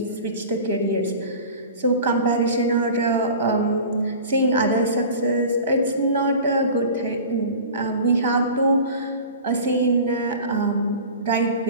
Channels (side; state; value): both; inverted; correlation -0.38